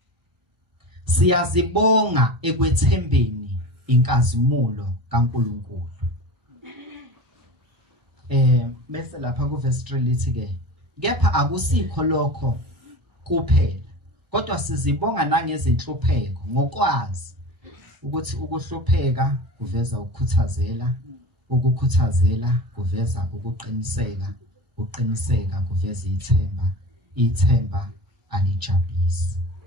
Siyazibonga ekwethembeni inkazimulo kaNkulunkulu. Bese lapha ku verse 3 lithi ke kepha akusikho lokho kuphela kodwa sizibonga nangezinhlupheko ngokwazi ukuthi ukuhlupheka kuveza ukukhuthazela, ukukhuthazela kuveza ukuqiniseka, uqiniseka kuveza ithemba, ithemba alijabulisi.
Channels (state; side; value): late; left; 1.0 ms